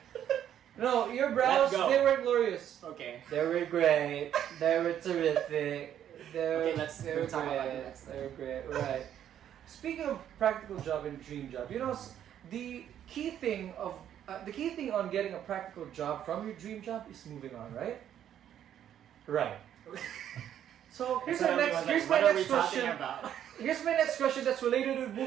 No, your brows, Let's go. they were glorious. Okay. They were great. They were terrific. Okay, let's they were talk about great. the next They were great. Right. Speaking of practical job and dream job, the key thing on getting a practical job from your dream job is moving on, right? Right. So here's my next question. About? Here's my next question that's related to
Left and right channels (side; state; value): left; quieter; 10.3 dB